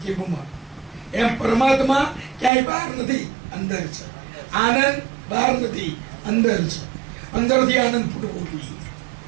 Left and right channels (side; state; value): left; drops out; at 2.5 s